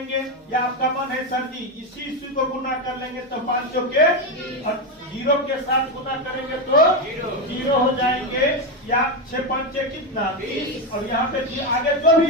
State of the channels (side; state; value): both; normal; correlation 0.10